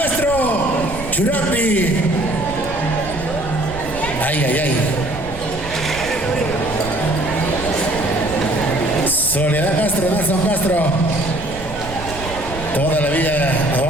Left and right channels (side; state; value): right; noise; rumble, 11 dB below the sound